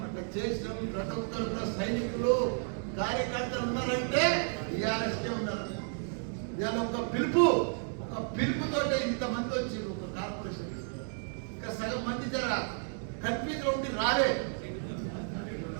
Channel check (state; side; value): silent; left; 56 dB below the other